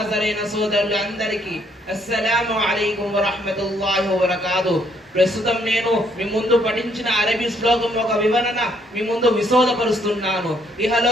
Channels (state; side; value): normal; both; correlation 0.69